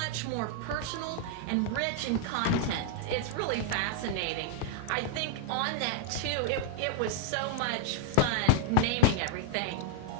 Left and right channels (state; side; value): different; both; correlation 0.00